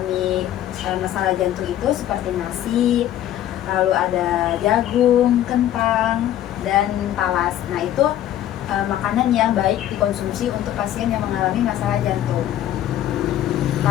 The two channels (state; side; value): quieter; right; 12.1 dB